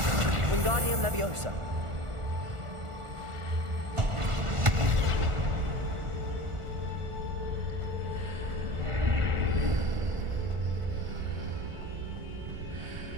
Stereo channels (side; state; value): left; late; 1.4 ms